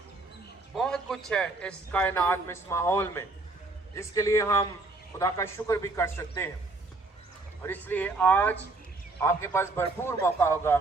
बहुत कुछ है इस कायनात में, इस माहौल में, जिसके लिए हम खुदा का शुक्र भी कर सकते हैं। और इसलिए आज आपके पास भरपूर मौका होगा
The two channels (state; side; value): quieter; left; 3.2 dB